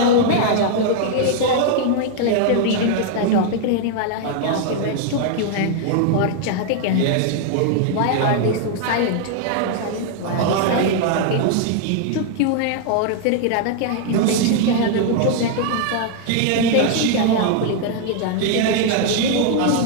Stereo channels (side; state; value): both; different; correlation 0.00